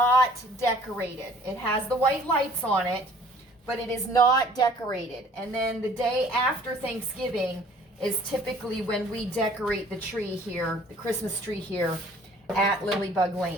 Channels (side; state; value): both; normal; correlation 0.54